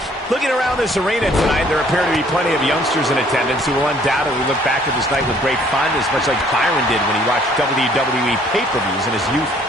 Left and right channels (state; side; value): normal; both; correlation 0.60